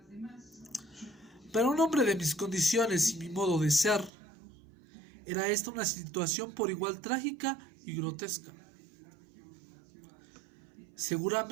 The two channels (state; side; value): drops out; left; at 4.1 s